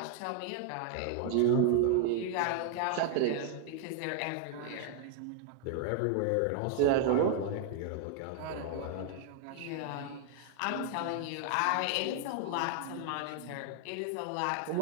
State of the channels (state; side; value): different; both; correlation 0.00